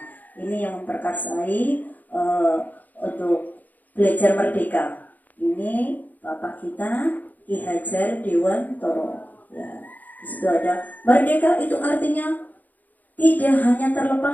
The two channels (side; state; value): right; late; 0.082 ms